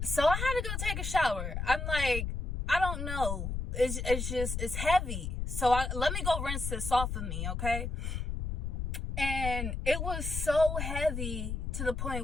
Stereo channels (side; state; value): left; noise; rumble, 3 dB below the sound